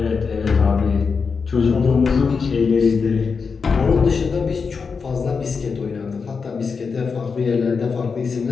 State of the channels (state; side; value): quieter; right; 5.3 dB